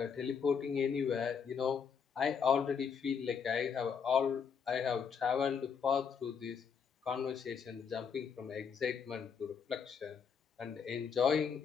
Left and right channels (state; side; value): quieter; right; 6.6 dB